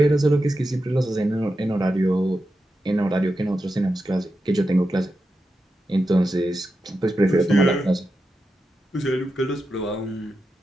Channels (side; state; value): both; normal; correlation 0.89